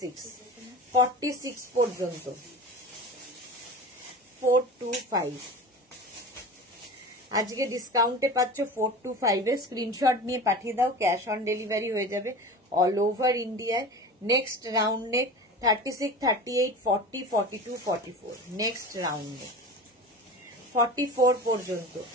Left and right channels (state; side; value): normal; both; correlation 0.33